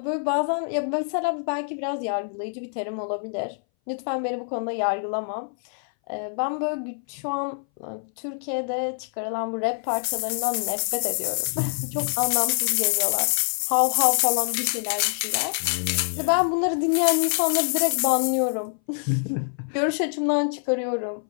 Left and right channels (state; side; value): silent; right; 60 dB below the other